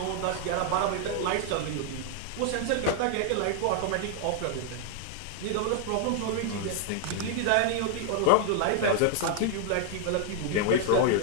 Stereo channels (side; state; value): both; different; correlation 0.00